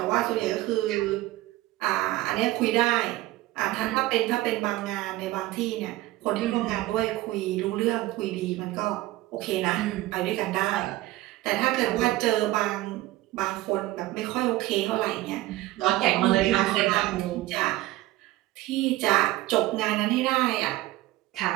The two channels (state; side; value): quieter; left; 17.3 dB